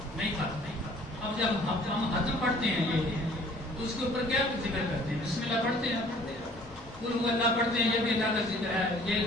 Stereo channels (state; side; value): normal; both; correlation 0.54